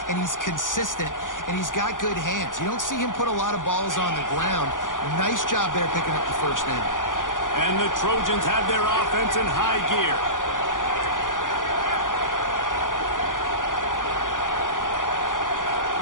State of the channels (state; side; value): late; right; 0.88 ms